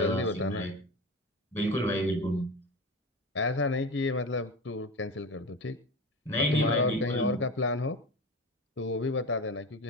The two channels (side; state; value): both; normal; correlation 0.27